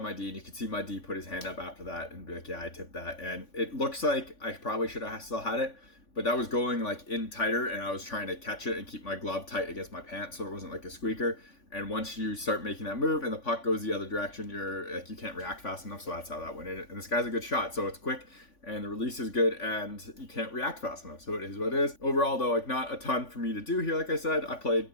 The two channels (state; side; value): late; right; 3.5 ms